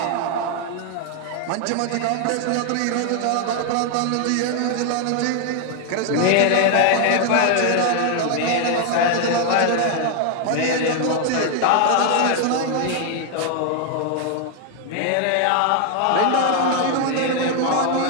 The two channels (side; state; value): both; different; correlation 0.00